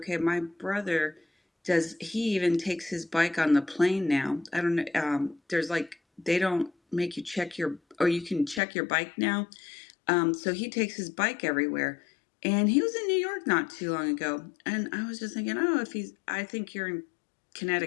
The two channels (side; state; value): right; drops out; at 8.6 s